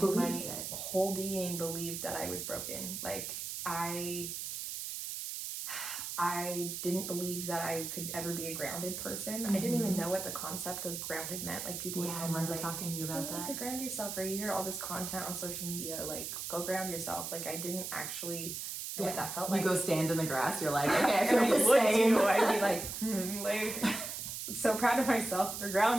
my whole being believed that I was broken. Like, I didn't believe that I could ever be a grounded person. I didn't even know what the concept of grounded meant. Like, people would tell me, I remember like, talking to you about you need that. to ground yourself, or you hear all this content on social media, like, go ground yourself. Like, I didn't actually know what that felt like. You go stand in the grass, you're like, okay, I feel and the same. I'd be like, so proud of myself for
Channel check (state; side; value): noise; right; hiss, 5 dB below the sound